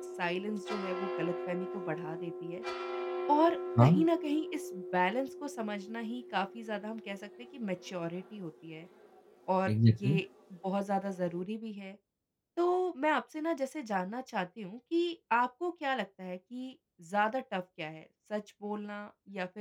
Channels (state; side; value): identical; both; correlation 1.00